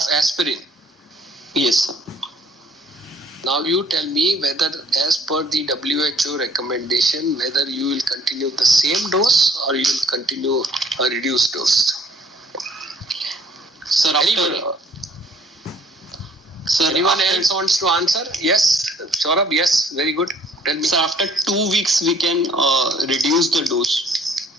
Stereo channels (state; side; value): normal; both; correlation 0.58